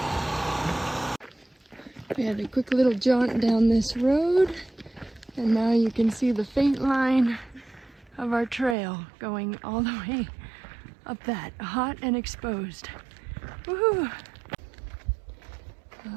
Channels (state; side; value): drops out; left; at 8.8 s